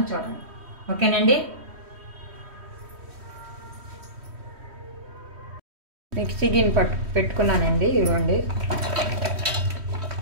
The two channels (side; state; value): left; late; 3.1 ms